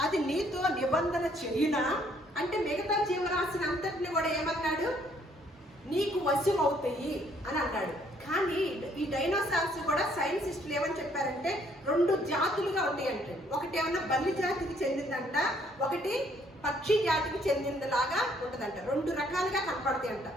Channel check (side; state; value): both; normal; correlation 0.65